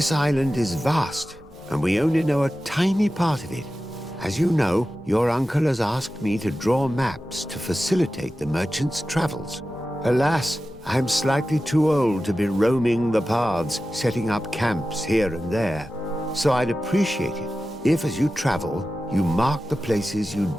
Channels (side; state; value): both; normal; correlation 0.94